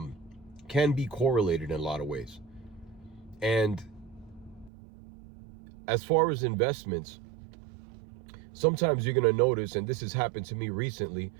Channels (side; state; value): left; drops out; at 4.7 s